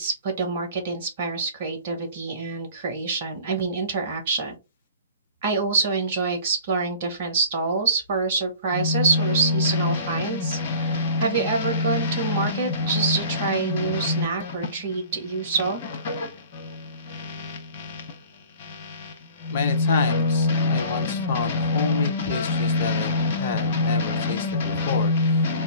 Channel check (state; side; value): inverted; both; correlation -0.44